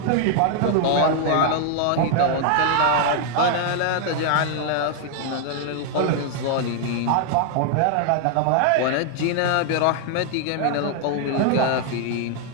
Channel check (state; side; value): different; both; correlation 0.00